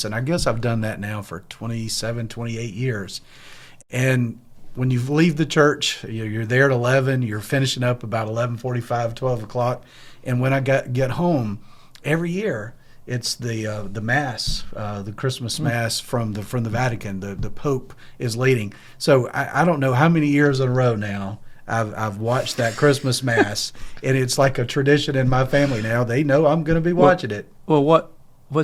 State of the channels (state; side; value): identical; both; correlation 1.00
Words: and I guess I've done that now for 27, 28 years. And when you leave the church, you're there at 11, you're finishing up about 11:45, 12 o'clock. And when I get home, every year, it's the Mass, the Christmas Mass from the Vatican. The Pope is leading. So I don't know how many years in a row now I've watched that Christmas Mass, and it's like a tradition in my family now. They know I'm going to be watching it. Well,